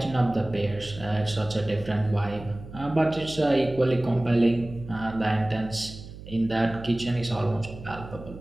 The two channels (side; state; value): right; noise; hum, 14 dB below the sound